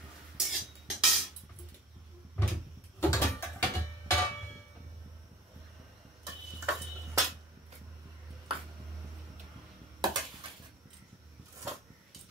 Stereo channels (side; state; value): both; normal; correlation 0.43